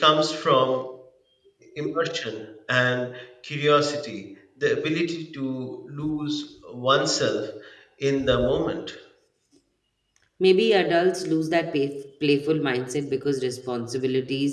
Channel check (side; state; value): both; identical; correlation 1.00